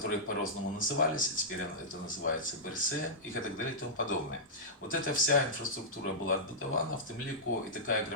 по-разному назывались, и теперь это называется БРС, и так далее и тому подобное. Вот эта вся инфраструктура была отбудована, в тем лику и такая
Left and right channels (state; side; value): normal; both; correlation -0.12